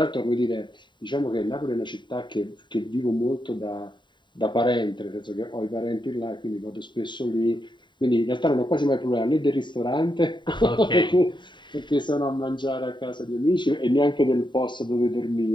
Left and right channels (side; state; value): right; late; 0.23 ms